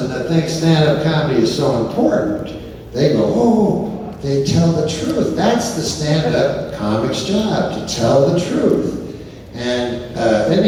that thinks stand-up comedy is so important, they go, oh, they tell the truth. That's the stand-up comic's job, to tell the truth. And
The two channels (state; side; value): identical; both; correlation 1.00